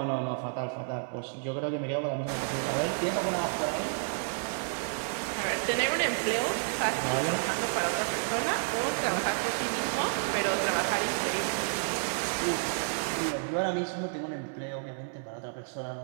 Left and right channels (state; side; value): silent; left; 57 dB below the other